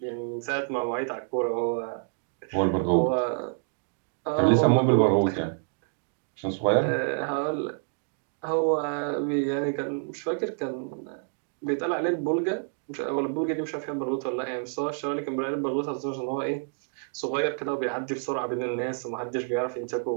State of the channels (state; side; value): silent; left; 59 dB below the other